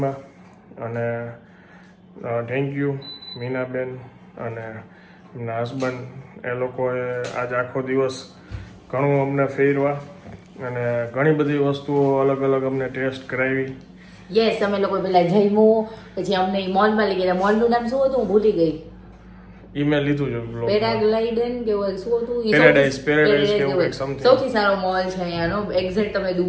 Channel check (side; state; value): both; identical; correlation 1.00